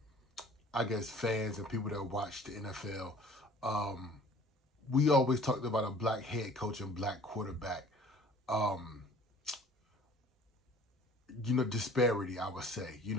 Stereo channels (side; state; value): both; normal; correlation 0.50